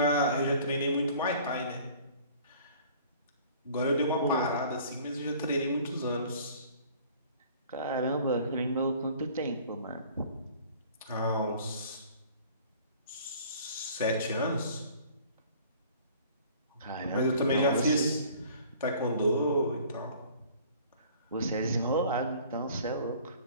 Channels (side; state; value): both; inverted; correlation -0.50